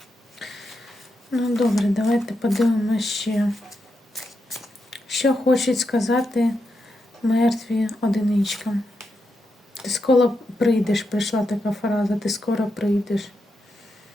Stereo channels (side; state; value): both; normal; correlation 0.85